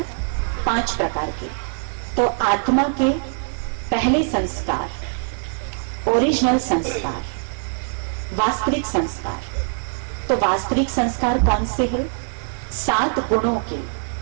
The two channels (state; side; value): silent; left; digital silence